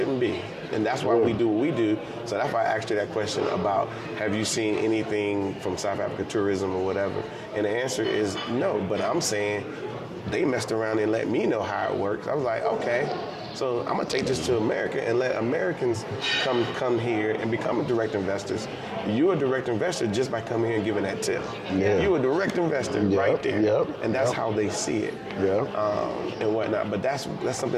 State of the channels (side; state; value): both; identical; correlation 1.00